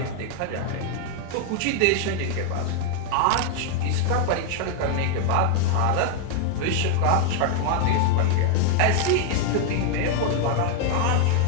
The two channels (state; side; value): different; both; correlation 0.01